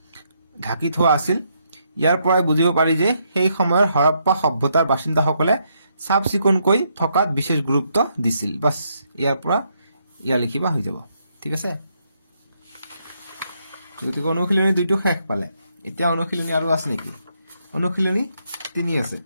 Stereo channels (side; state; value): both; inverted; correlation -0.76